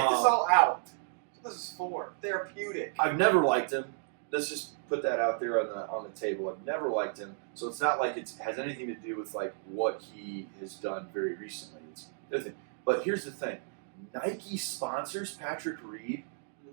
all out. That's what this is for. Therapeutic. I've never liked him. Let's just put that out there on the table. I've never liked him. So it's not like it has anything to do with like what he has done very recently. It's the other thing. But here's the thing. Nike sponsors Patrick Reed.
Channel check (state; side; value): silent; left; digital silence